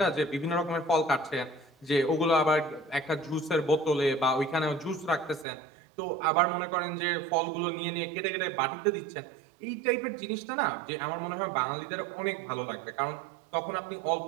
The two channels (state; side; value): drops out; left; at 5.5 s